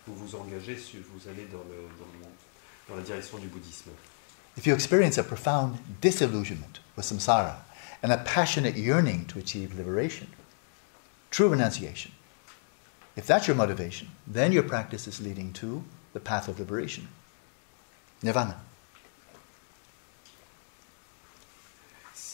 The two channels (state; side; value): silent; right; digital silence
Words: vous engagez, vous allez dans la direction du bouddhisme. If you experience a profound disillusionment with samsara and a passionate yearning to achieve liberation, true renunciation, if that's your motivation, then your practice is leading to the path of liberation, nirvana.